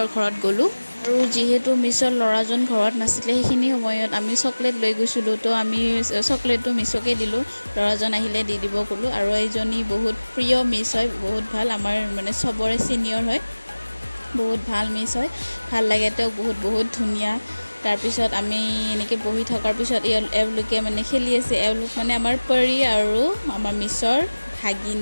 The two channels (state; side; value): inverted; both; correlation -1.00